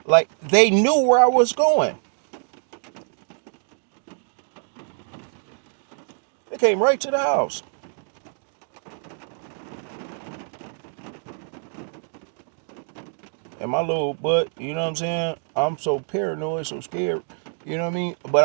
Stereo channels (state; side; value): silent; left; digital silence